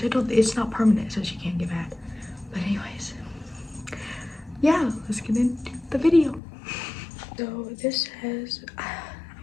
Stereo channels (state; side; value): drops out; right; at 6.4 s